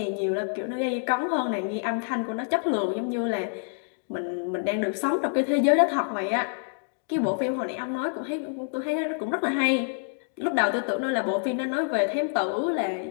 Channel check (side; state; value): right; silent; digital silence